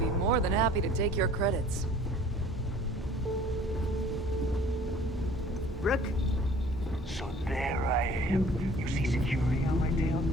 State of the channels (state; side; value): normal; both; correlation 0.51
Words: more than happy to take your credits. Rook? So there I am. You see security on my tail?